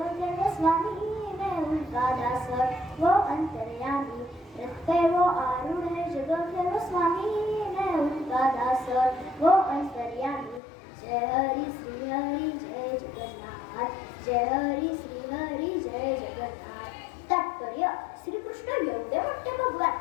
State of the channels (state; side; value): drops out; right; at 10.6 s